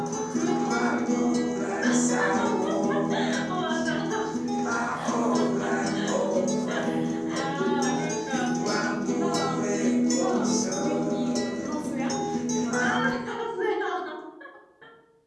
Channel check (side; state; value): both; identical; correlation 1.00